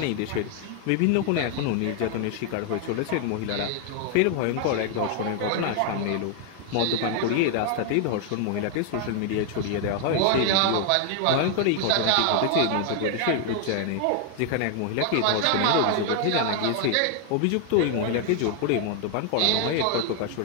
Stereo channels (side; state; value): both; different; correlation 0.00